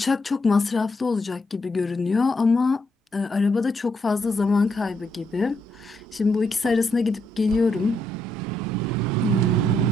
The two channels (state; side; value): normal; both; correlation 0.77